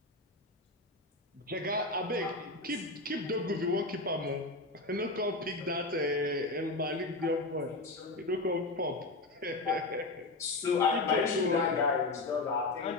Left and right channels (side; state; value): right; quieter; 3.1 dB